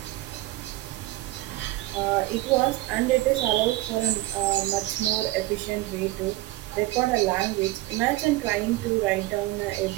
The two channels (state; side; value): quieter; left; 18.1 dB